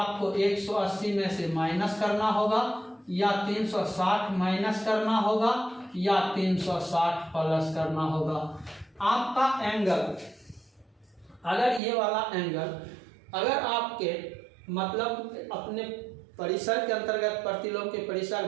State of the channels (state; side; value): drops out; left; at 11.8 s